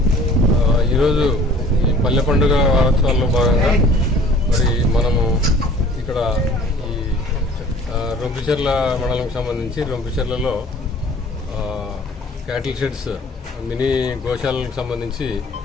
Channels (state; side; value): normal; both; correlation 0.50